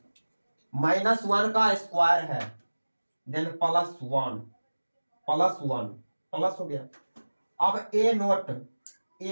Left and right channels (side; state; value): both; inverted; correlation -1.00